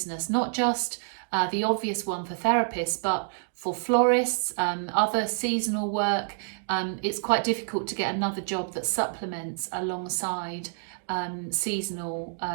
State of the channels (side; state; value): left; silent; digital silence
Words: not just the obvious one for therapists, but for florists, other seasonal work, it's quite difficult to get another job that supplements alongside seasonal